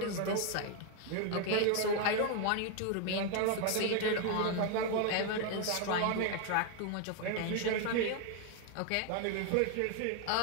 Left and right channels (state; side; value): different; both; correlation 0.00